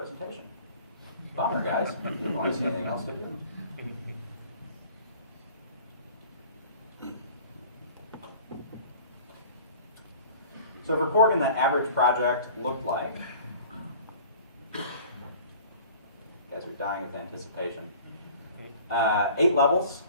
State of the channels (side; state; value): both; inverted; correlation -0.46